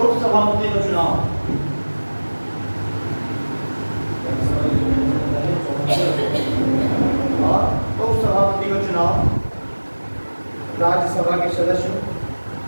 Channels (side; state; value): both; inverted; correlation -1.00